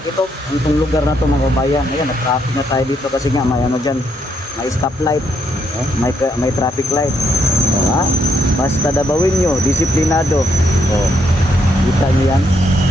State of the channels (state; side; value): normal; both; correlation 0.75